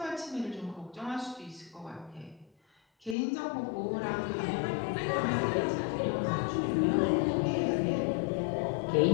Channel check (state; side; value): drops out; right; at 3.2 s